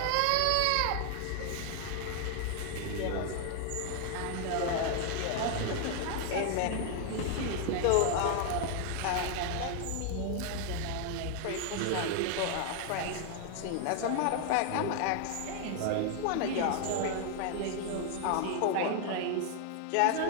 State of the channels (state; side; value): different; both; correlation 0.00